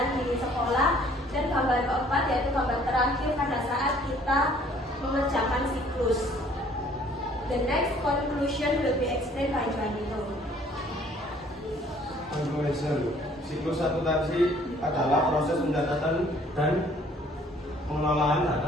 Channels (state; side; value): normal; both; correlation 0.58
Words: The next conclusion will be explained by Juanito. Conclusion. Siklus akuntansi adalah proses pencatatan dan pengelolaan